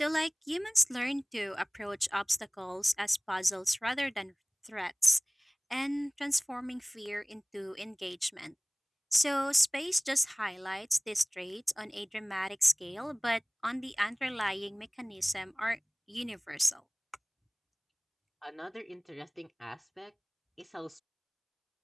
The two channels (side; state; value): both; identical; correlation 1.00